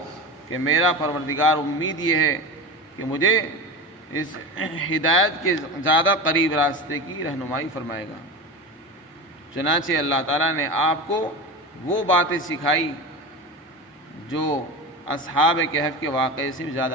کہ میرا پروردگار امید یہ ہے کہ مجھے اس ہدایت کے زیادہ قریب راستے کی رہنمائی فرمائے گا۔ چنانچہ اللہ تعالیٰ نے آپ کو وہ باتیں سکھائی جو اصحاب کہف کے واقعے سے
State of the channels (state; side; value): normal; both; correlation 0.26